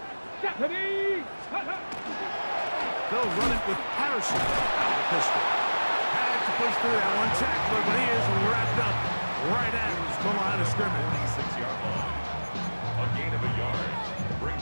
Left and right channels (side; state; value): both; inverted; correlation -1.00